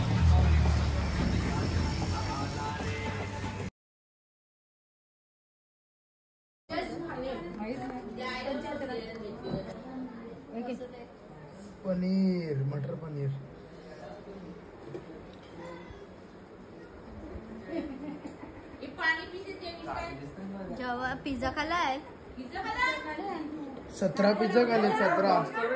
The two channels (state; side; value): identical; both; correlation 1.00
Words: पनीर, मटर पनीर. जेव्हा पिझ्झा खाल्लाय 17 पिझ्झा खाल्ले. 17